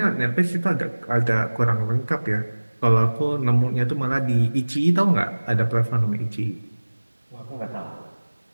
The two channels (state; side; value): inverted; both; correlation -1.00